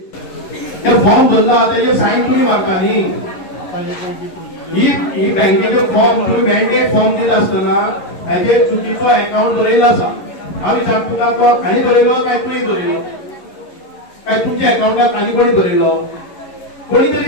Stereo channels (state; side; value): late; right; 11 ms